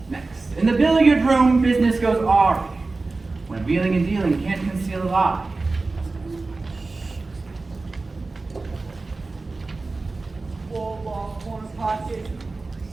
Next, in the billiard room, business goes awry when wheeling and dealing can't conceal a lie. 4 ball corner pocket,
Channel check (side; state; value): left; quieter; 3.6 dB